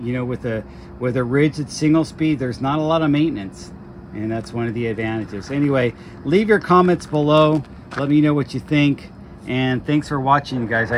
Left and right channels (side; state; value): both; identical; correlation 1.00